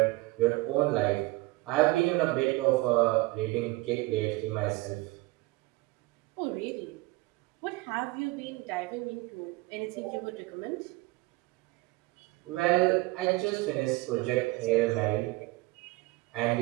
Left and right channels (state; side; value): quieter; left; 21.5 dB